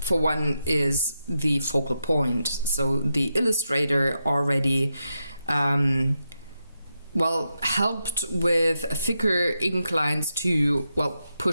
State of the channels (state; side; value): inverted; both; correlation -0.86